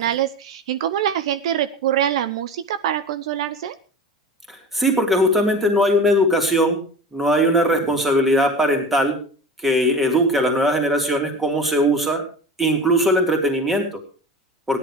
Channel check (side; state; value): both; normal; correlation 0.32